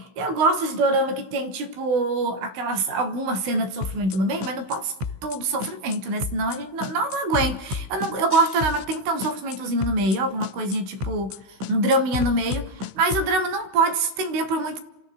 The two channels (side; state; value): left; late; 16 ms